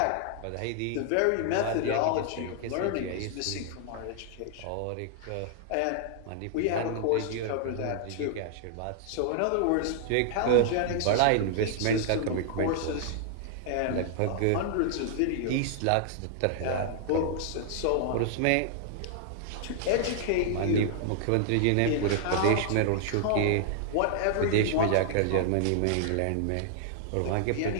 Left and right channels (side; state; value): both; different; correlation -0.01